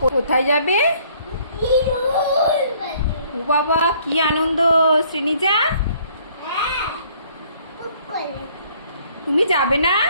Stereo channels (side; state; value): both; inverted; correlation -0.60